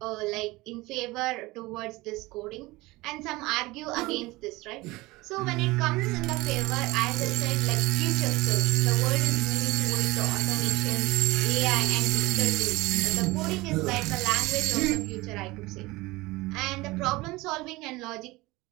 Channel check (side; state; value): left; quieter; 21.0 dB